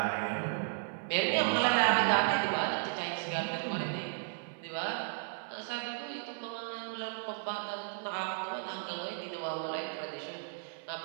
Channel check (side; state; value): left; silent; 55 dB below the other